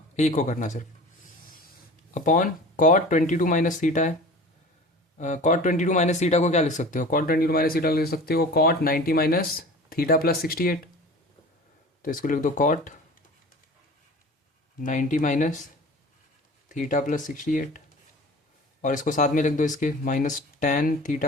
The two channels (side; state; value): both; normal; correlation 0.40